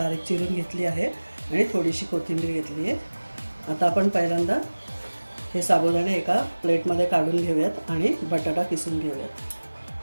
चिरून घेतली आहे आणि थोडीशी कोथिंबीर घेतली आहे। आता आपण पहिल्यांदा हे साबुदाणे एका प्लेटमध्ये काढून घेऊयात आणि बटाटा किसून घेऊयात।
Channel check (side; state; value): both; inverted; correlation -1.00